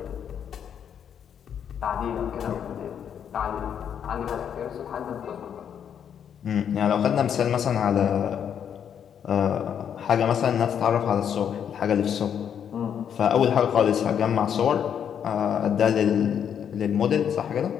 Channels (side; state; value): right; quieter; 8.5 dB